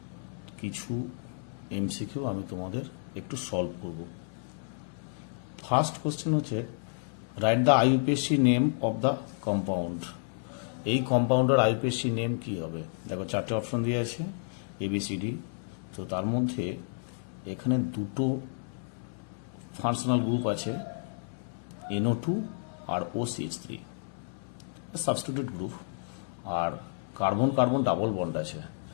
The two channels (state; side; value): silent; right; 56 dB below the other